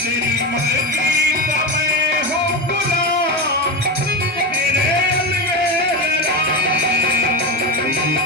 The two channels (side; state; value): both; normal; correlation 0.16